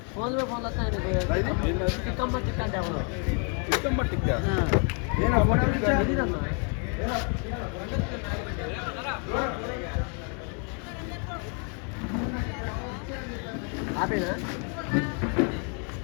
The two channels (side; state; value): right; quieter; 39.2 dB